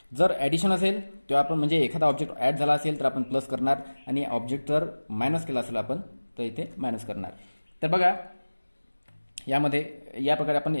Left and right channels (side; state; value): both; inverted; correlation -1.00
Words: जर ॲडिशन असेल तेव्हा आपण म्हणजे एखादा ऑब्जेक्ट ॲड झाला असेल तर आपण प्लस करणार आणि ऑब्जेक्ट जर मायनस केला असेल आपण तर इथे मायनस करणार. तर बघा यामध्ये या प्रकारे आपण